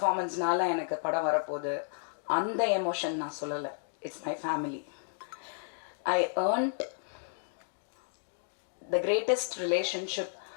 எனக்கு படம் வரப்போகுது, அந்த எமோஷன் நான் சொல்லலை. It's my family. I earned the greatest relationship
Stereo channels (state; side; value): silent; right; digital silence